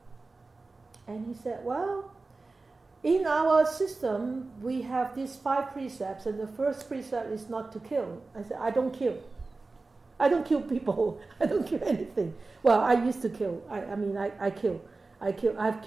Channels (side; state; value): left; quieter; 3.6 dB